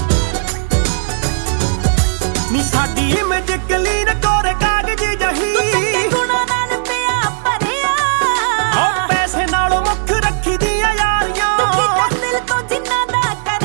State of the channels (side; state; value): left; silent; digital silence